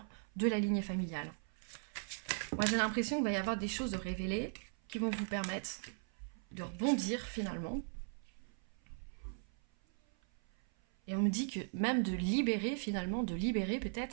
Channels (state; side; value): silent; left; 52 dB below the other